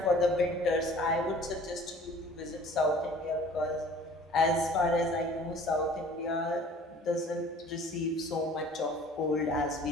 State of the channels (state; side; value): normal; both; correlation 0.49